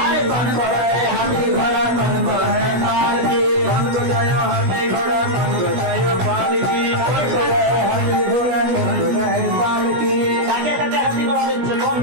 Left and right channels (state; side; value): late; left; 16 ms